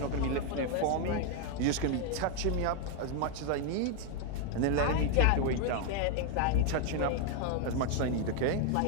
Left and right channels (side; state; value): both; different; correlation 0.01